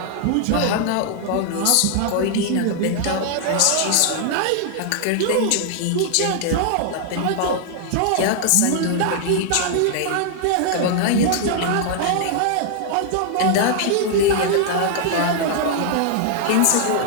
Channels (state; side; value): different; both; correlation -0.01